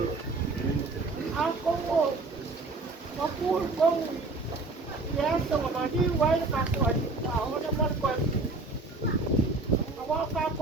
Ako mo. Mapul kong yasa mga đi quay cả tuổi bảo nó mất quên có cả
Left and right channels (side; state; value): left; quieter; 3.5 dB